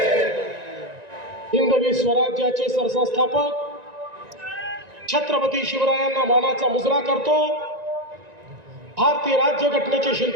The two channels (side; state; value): left; late; 1.9 ms